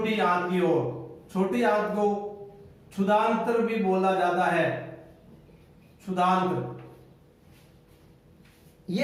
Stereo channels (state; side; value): identical; both; correlation 1.00